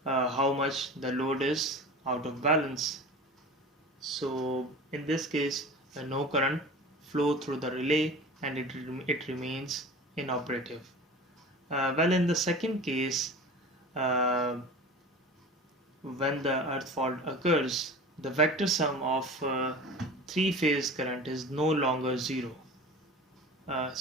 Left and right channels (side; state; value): both; normal; correlation 0.36